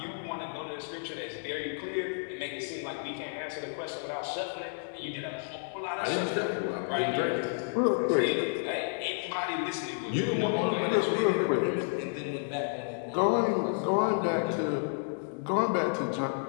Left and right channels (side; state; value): right; silent; 57 dB below the other